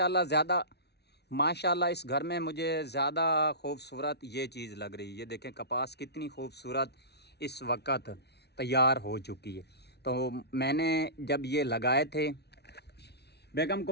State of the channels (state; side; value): late; right; 0.49 ms